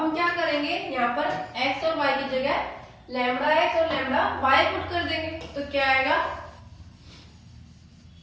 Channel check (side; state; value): both; identical; correlation 1.00